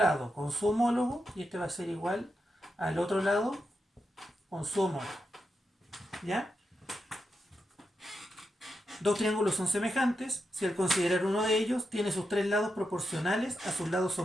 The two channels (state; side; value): normal; both; correlation 0.87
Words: con su homólogo y este va a ser igual al otro lado con su homólogo. ¿Ya? Dos triángulos son semejantes si al considerar uno de ellos tiene sus tres lados proporcionales a sus lados